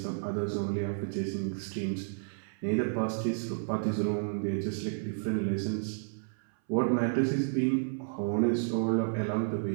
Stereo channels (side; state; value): left; silent; 57 dB below the other